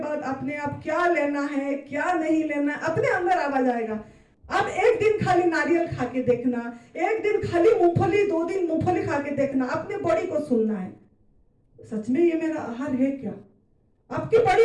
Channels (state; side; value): identical; both; correlation 1.00